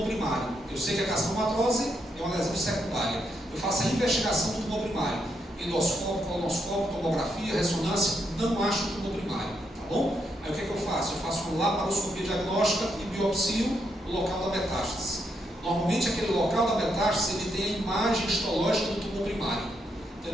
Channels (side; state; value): both; normal; correlation 0.79